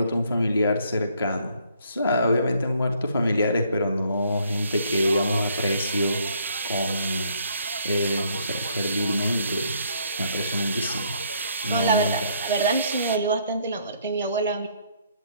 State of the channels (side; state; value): both; inverted; correlation -0.67